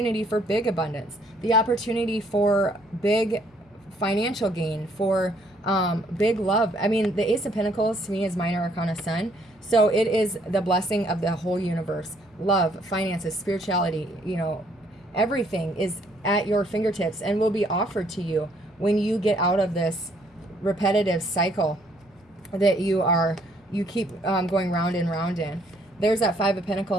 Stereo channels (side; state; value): both; normal; correlation 0.66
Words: for big abundance, the opportunity for big financial gain, for big love. I mean, the Ace of Pentacles to me is Minor Arcana Sun. So it is the blessing of the whole universe. Love, finances, spirituality, everything is at your fingertips and will be offered to you when you get out of this repetitive cycle that you keep going round and round in. There's that Five of